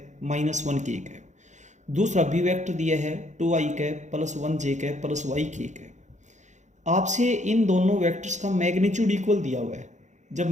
माइनस 1k कैप। दूसरा बी वेक्टर दिया है 2i cap plus 1j cap plus yk cap. आपसे इन दोनों वेक्टर्स का मैग्नीट्यूड इक्वल दिया हुआ है। जब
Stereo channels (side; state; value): left; late; 0.35 ms